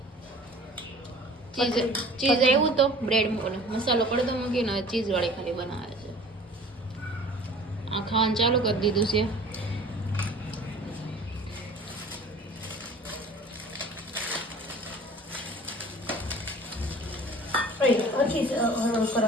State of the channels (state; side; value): normal; both; correlation 0.46